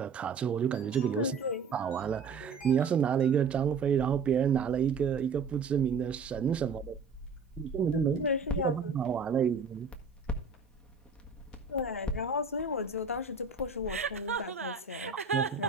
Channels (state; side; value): quieter; left; 5.1 dB